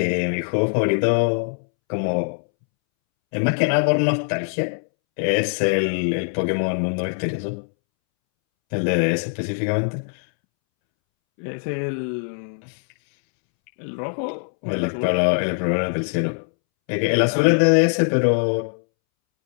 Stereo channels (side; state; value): right; silent; 64 dB below the other